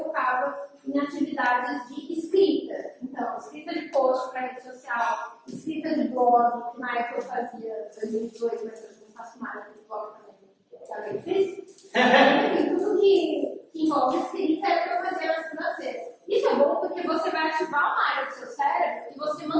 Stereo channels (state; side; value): identical; both; correlation 1.00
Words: focava em atividades de escrita. Então, escrita de post para rede social, escrita de blog, que na época eu fazia 2018, mas eu não faço mais de blog também fiz. Enfim, tudo que envolve escrita é o que eu fazia na segunda-feira. Isso é bom porque você vai ativar uma área do seu cérebro e você